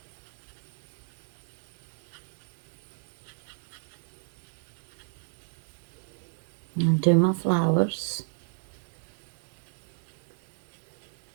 And do my flowers.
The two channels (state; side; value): silent; left; digital silence